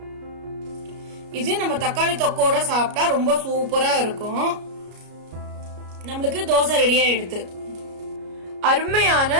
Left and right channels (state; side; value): late; left; 33 ms